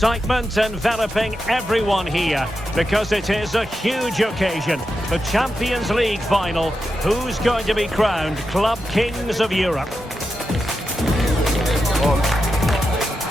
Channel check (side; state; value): both; normal; correlation 0.88